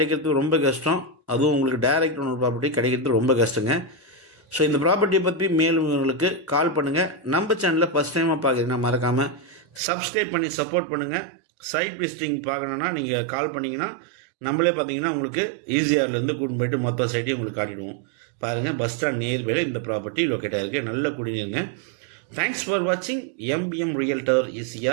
ரொம்ப கஷ்டம். அதுவும் உங்களுக்கு டைரக்ட் ஓனர் ப்ராப்பர்ட்டி கிடைக்கிறது ரொம்ப கஷ்டங்க. ஸோ இந்த ப்ராப்பர்ட்டியை பற்றி மேலும் உங்களுக்கு கால் பண்ணுங்கள். நம்ம சேனலில் ஃபஸ்ட் டைமாக பார்க்குறீங்கன்னா மறக்காமல் சப்ஸ்கிரைப் பண்ணி சப்போர்ட் பண்ணுங்கள். சைட் விசிட்டிங் பார்க்கணுன்னா நீங்கள் கால் பண்ணிங்கன்னா நம்மளே பார்த்தீங்கன்னா உங்களுக்கு ஈசிஆர்லேருந்து கூட்டின்னு போய்ட்டு மொத்த சைட்டையும் உங்களுக்கு காட்டிடுவோம். பாருங்கள், பஸ் ஸ்டாண்ட் நியர்பையில் இந்த ப்ராப்பர்ட்டி லொக்கேட் ஆகிருக்கு. நல்ல குடிநீருங்க. தேங்க்ஸ் ஃபார் வாட்சிங் எம்பிஎம் ரியல்டர்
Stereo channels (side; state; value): left; drops out; at 9.8 s